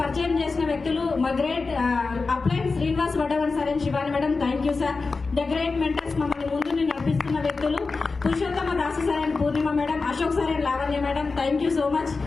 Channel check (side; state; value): right; quieter; 4.1 dB